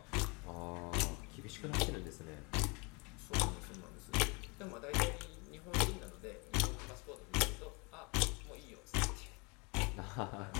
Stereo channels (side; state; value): right; quieter; 29.8 dB